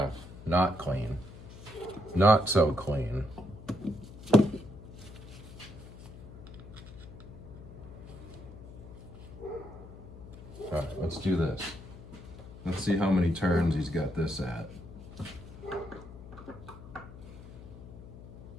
not clean. Not so clean. All right, let's do this. Let's see how many turns he's got this at.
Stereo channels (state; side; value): noise; left; hum, 15 dB below the sound